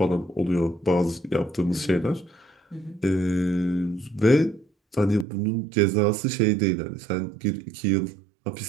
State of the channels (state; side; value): drops out; left; at 5.2 s